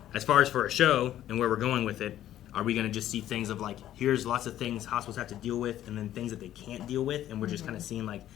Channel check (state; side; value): quieter; right; 12.3 dB